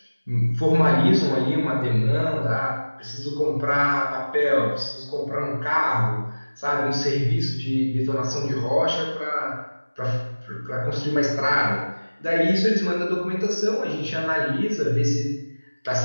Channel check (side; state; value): both; inverted; correlation -1.00